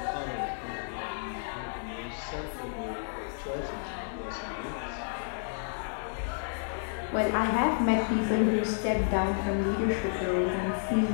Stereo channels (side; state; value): right; silent; digital silence